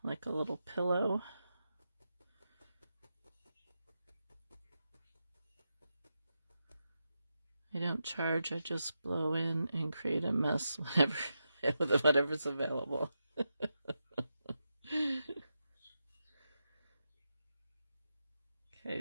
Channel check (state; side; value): inverted; both; correlation -0.87